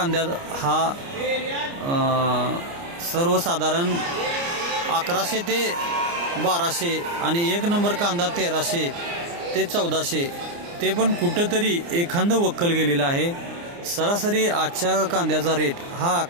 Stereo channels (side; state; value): left; late; 29 ms